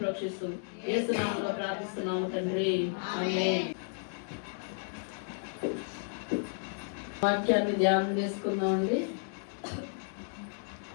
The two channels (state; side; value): silent; right; digital silence